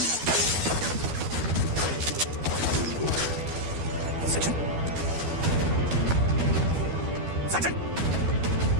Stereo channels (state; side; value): late; left; 12 ms